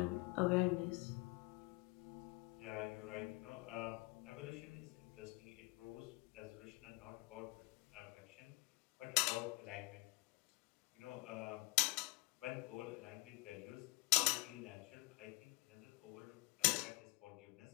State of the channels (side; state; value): right; quieter; 25.2 dB